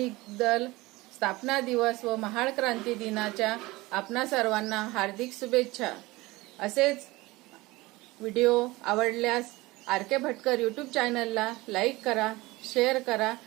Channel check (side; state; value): left; quieter; 20.9 dB